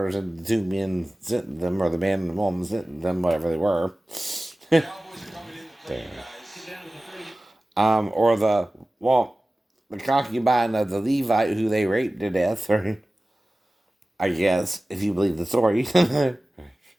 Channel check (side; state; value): both; normal; correlation 0.96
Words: and the two men sent them, or the man and the woman sent them, whatever they were. Or the concubine of the Levite who they raped to death, or I guess, if you believe the story.